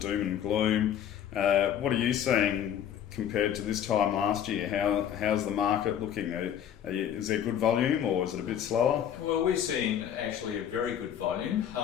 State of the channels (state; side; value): quieter; right; 9.6 dB